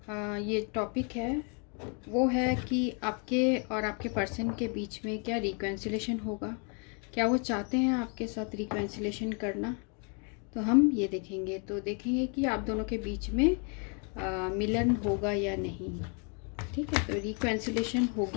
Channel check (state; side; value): quieter; right; 37.8 dB